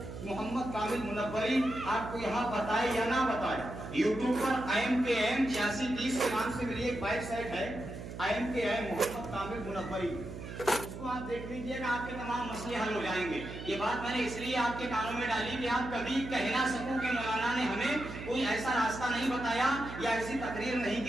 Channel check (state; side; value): noise; right; hum, 10 dB below the sound